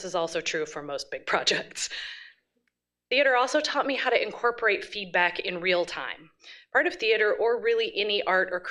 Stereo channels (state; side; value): identical; both; correlation 1.00